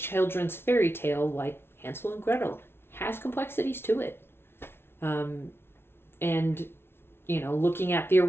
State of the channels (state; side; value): late; right; 0.12 ms